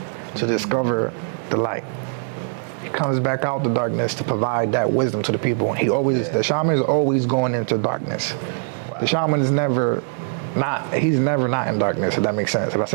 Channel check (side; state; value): left; silent; digital silence